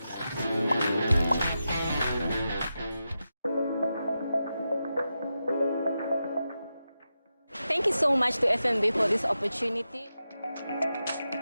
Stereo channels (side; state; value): both; inverted; correlation -0.89